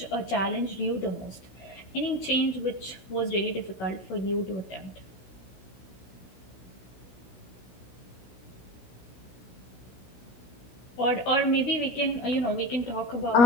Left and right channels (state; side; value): late; right; 16 ms